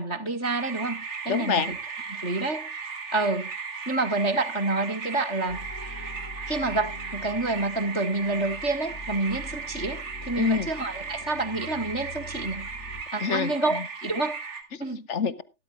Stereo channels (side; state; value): right; late; 3.4 ms